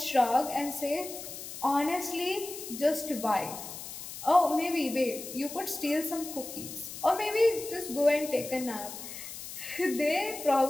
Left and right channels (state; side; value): noise; left; hiss, 10 dB below the sound